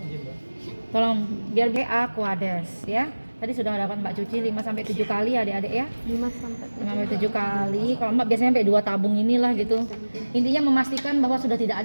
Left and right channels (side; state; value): both; inverted; correlation -1.00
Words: biar Aquades ya. Tadi sudah dapat mbak cuci 5-7 kali adik-adik ya, 5-7 kali. Kalau mbak biasanya sampai 2 tabung inilah gitu. Intinya memastikan bahwa sudah